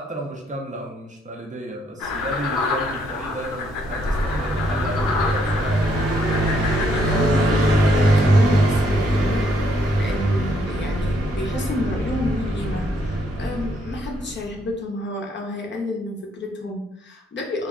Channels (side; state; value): both; normal; correlation 0.71